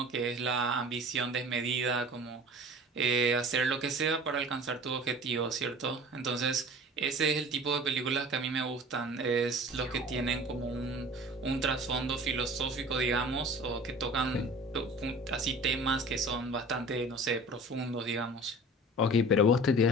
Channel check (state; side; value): normal; both; correlation 0.42